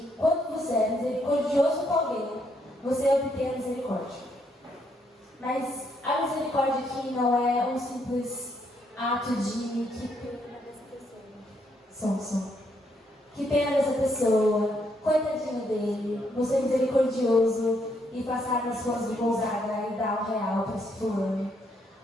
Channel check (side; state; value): both; normal; correlation 0.74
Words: quando você é misericordioso com alguém, você obtém a misericórdia. Mas a misericórdia aqui não é um simples ato de que pena dessa pessoa. Que pena dessa pessoa, coitadinho dele, você é misericordioso e passar nas suas de Gonzaga e dar R$1 para esse fulano.